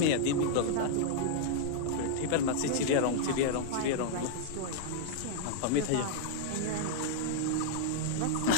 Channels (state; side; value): different; both; correlation -0.01